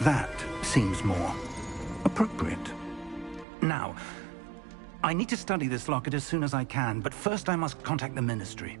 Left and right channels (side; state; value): left; drops out; at 3.5 s